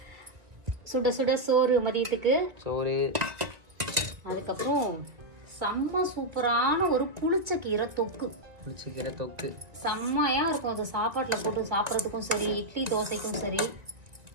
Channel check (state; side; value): late; left; 2.1 ms